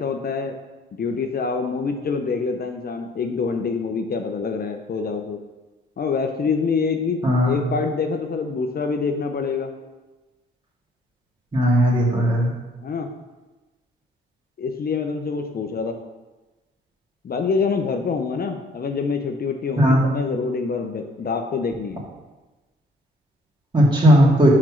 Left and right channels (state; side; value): normal; both; correlation 0.60